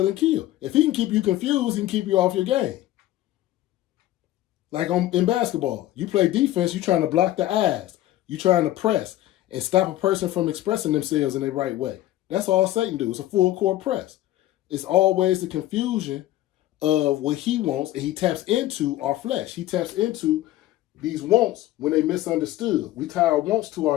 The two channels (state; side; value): quieter; right; 14.9 dB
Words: and kill. If he can keep you confused, he can keep you off your game. Like in basketball, you play defense, you're trying to block the eyes. You're trying to press and stop a person from expressing themselves in the right way. That's all Satan do. It's a full court press. It's always the confusion of what he wants, and he taps into our flesh. He taps into these wants when they misunderstood. We tie our wants to